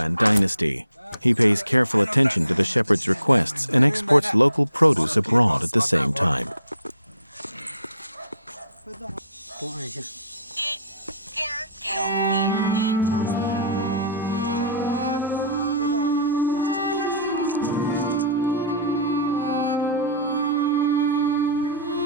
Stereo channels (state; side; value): inverted; both; correlation -0.51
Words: dynasty. He pays careful attention to the shepherd's requests and exports local produce abroad at the same time.